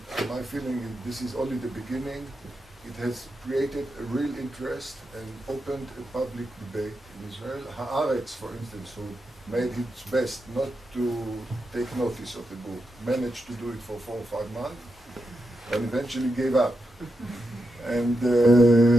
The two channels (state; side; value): normal; both; correlation 0.86